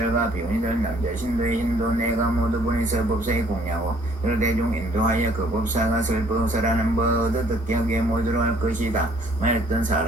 비운이들 남자 신도의 인도 내가 모두 보내서 법사에 공양하고 여러 대중 인도하여 그 법사가 설법설하는 법 듣게 하게 모두로 할 것이다. 만였던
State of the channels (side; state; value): both; normal; correlation 0.60